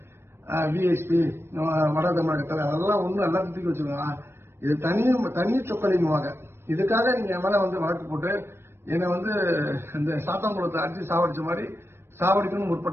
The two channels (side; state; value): left; late; 0.12 ms